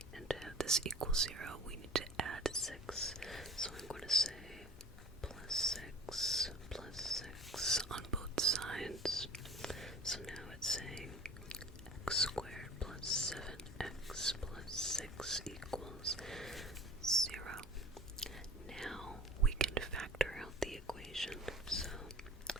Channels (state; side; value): normal; both; correlation 0.43